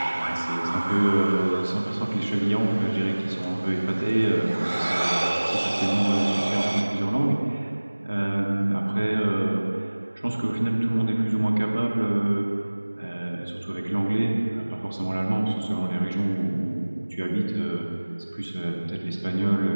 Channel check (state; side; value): inverted; both; correlation -1.00